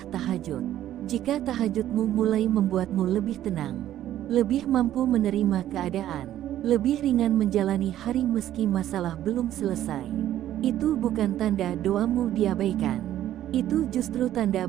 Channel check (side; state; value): left; quieter; 12.4 dB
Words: tahajud. Jika tahajudmu mulai membuatmu lebih tenang, lebih mampu menerima keadaan, lebih ringan menjalani hari meski masalah belum selesai, itu bukan tanda doamu diabaikan. Itu justru tanda